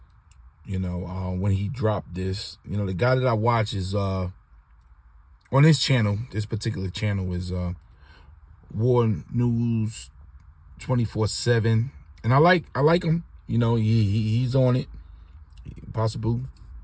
You know, when he dropped this, you know, the guy that I watch is on this channel. This particular channel is War News 24/7, and I like him. You know, he's on it. Possible,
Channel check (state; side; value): identical; both; correlation 1.00